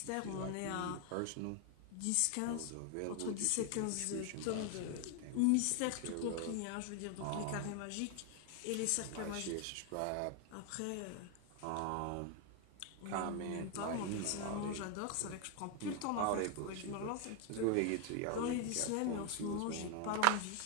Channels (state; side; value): different; both; correlation 0.01